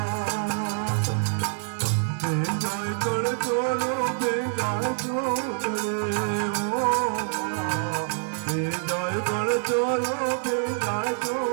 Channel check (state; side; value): silent; left; digital silence